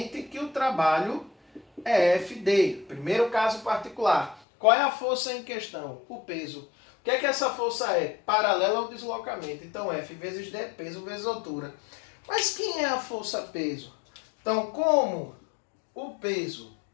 que o trabalho é FD. Primeiro caso particular. Qual é a força em questão? O peso. O que é que essa força é? Paralela ao deslocamento. Então, F vezes D, peso vezes altura. Mas quem é a força-peso? Então, como o peso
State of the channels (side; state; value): right; drops out; at 4.4 s